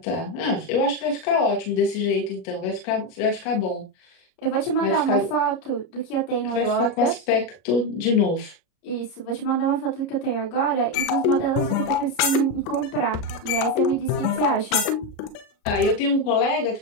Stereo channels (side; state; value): right; late; 33 ms